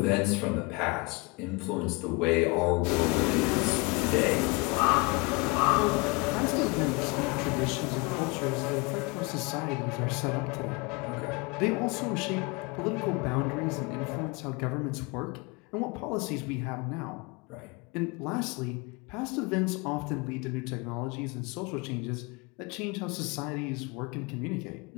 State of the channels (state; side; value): quieter; right; 27.5 dB